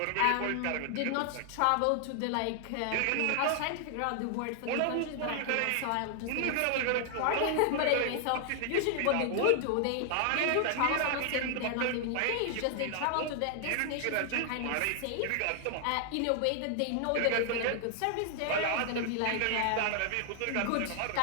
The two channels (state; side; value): different; both; correlation 0.00